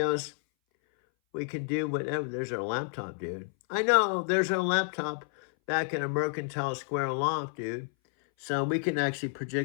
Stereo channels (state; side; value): silent; right; 58 dB below the other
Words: We can do whatever. There's our laptop, dude. I know, there's our laptop back in a Mercantile Square loft, dude. So we can actually